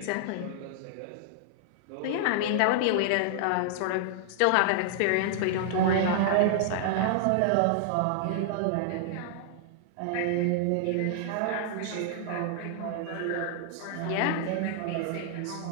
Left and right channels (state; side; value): different; both; correlation -0.01